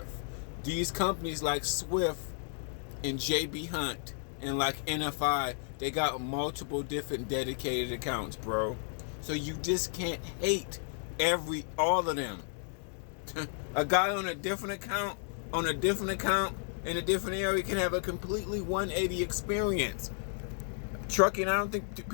These companies like Swift and JB Hunt and like NFI, they got multiple different dedicated accounts, bro. So you just can't hate all of them. A guy on a different account, in a different area can have a completely 180 experience. Trucking, I don't think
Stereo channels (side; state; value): right; silent; 56 dB below the other